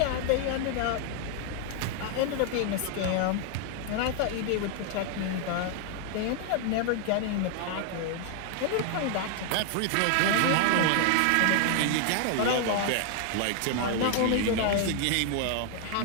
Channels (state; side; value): different; both; correlation 0.00